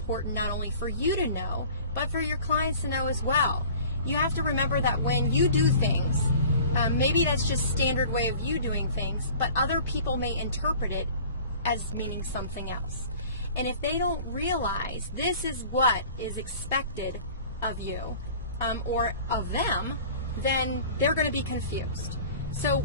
not only for you to know, but for your clients to know as well. You have to remember that when you do things, maybe that's just standard way of you doing things, but other people may interpret it as meaning something else. And if they don't realize this is what is expected of you or of them, then they're going to be confused. So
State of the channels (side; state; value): both; inverted; correlation -0.45